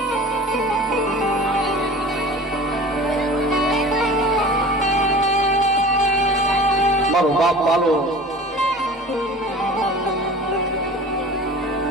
મારો બાપ પાલો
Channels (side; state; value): both; normal; correlation 0.39